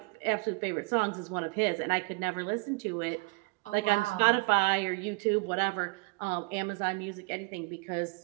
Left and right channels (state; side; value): quieter; left; 29.4 dB